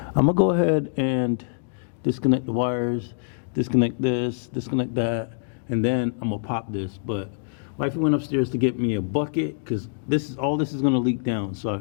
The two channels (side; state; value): right; silent; digital silence